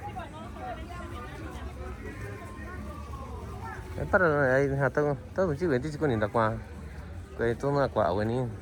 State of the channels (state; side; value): identical; both; correlation 1.00